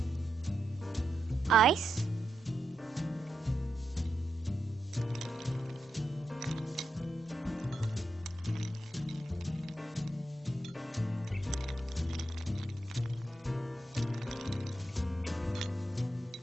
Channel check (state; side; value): normal; both; correlation 0.85